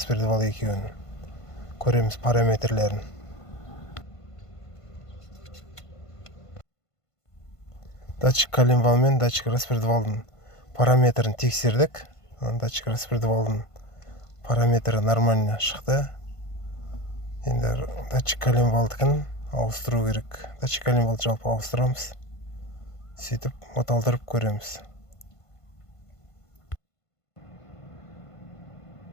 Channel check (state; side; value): late; right; 1.5 ms